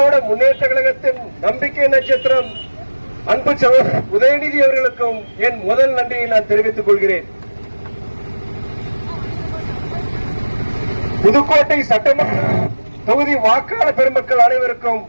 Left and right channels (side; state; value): both; inverted; correlation -1.00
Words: முன்னேற்ற கழகத்தின் நம்பிக்கை நட்சத்திரம் அன்பு சகோதரர் உதயநிதி அவர்களுக்கும் என் முதல் நன்றியை நான் தெரிவித்துக் கொள்கிறேன். புதுக்கோட்டை சட்டமன்ற தொகுதி வாக்காளர் பெருமக்கள் அனைவருக்கும்